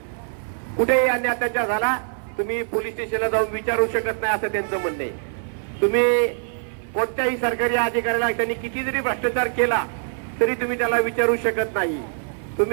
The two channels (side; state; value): left; silent; 58 dB below the other